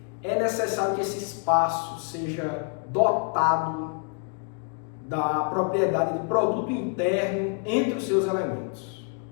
é necessário que esse espaço seja dotado da propriedade de produto interno entre os seus elementos.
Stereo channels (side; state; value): right; quieter; 36.7 dB